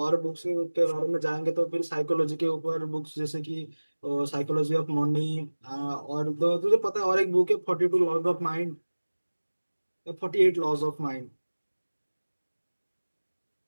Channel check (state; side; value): inverted; both; correlation -1.00